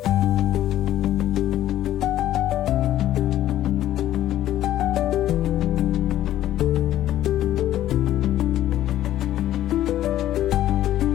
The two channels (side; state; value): right; quieter; 12.9 dB